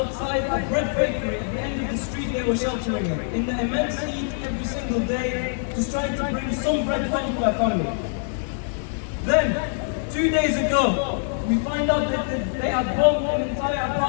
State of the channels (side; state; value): right; silent; digital silence